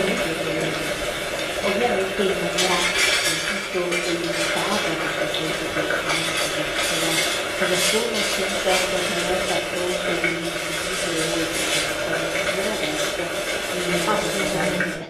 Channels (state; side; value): identical; both; correlation 1.00